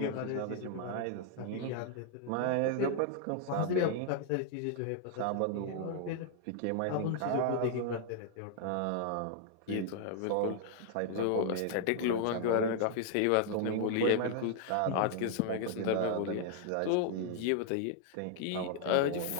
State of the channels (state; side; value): different; both; correlation 0.00